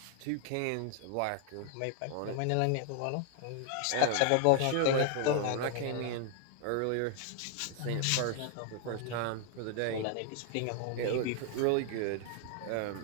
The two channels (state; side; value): different; both; correlation 0.00